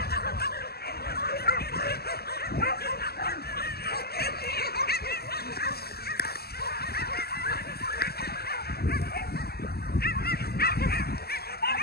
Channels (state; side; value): late; right; 0.46 ms